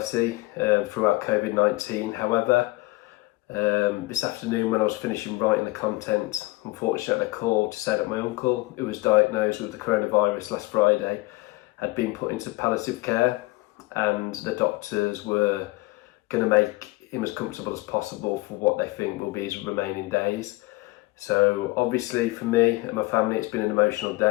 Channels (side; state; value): right; quieter; 21.5 dB